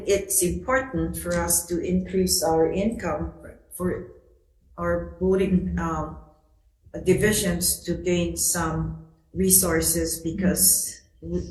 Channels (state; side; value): identical; both; correlation 1.00